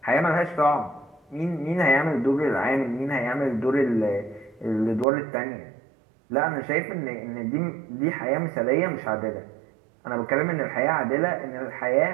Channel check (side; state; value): left; drops out; at 5.1 s